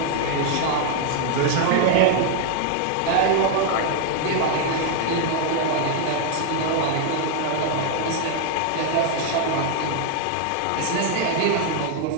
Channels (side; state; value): both; different; correlation 0.00